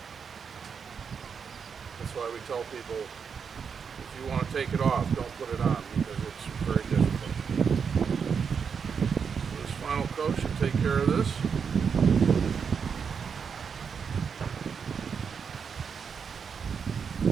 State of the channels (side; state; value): left; quieter; 6.4 dB